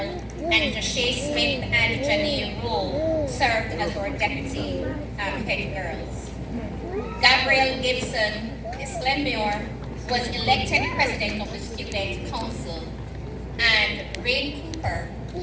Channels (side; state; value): both; identical; correlation 1.00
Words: And Jashay Smith and Janine Rowe served as our deputy head girls. Gabrielle Gibson, Miss Glenmuir, was elected president of the student council. And Rain Cooper,